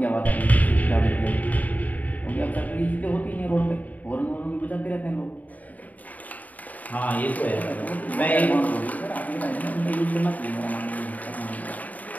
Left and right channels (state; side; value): late; right; 0.075 ms